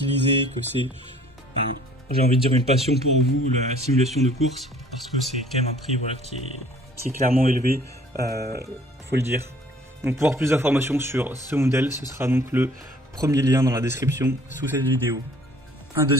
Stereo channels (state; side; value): normal; both; correlation 0.54